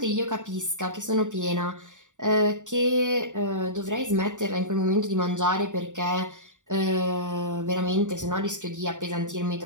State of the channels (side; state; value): left; late; 0.86 ms